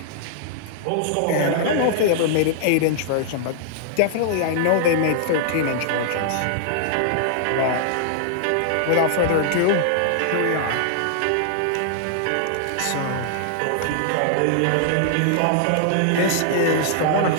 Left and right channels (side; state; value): both; different; correlation -0.01